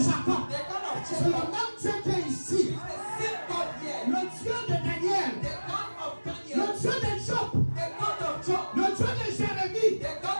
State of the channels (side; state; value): both; inverted; correlation -1.00